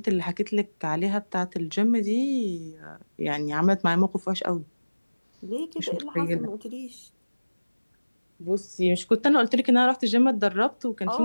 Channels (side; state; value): both; inverted; correlation -1.00